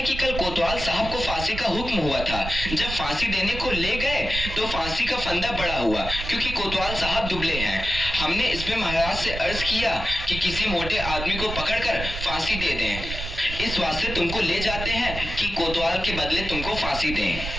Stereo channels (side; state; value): right; noise; rumble, 7 dB below the sound